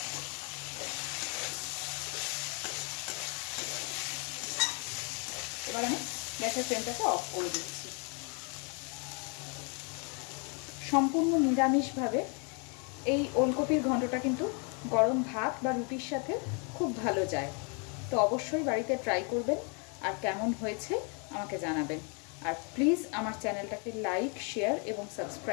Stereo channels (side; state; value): right; quieter; 36.0 dB